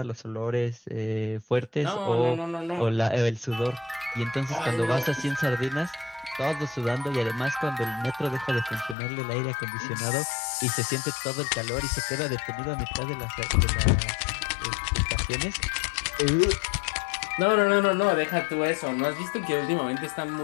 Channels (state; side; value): drops out; right; at 9.0 s